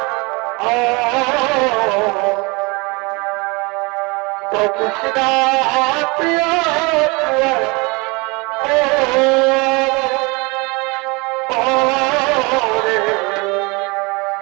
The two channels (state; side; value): quieter; left; 27.3 dB